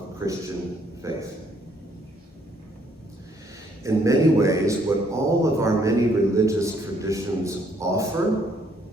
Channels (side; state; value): both; normal; correlation 0.68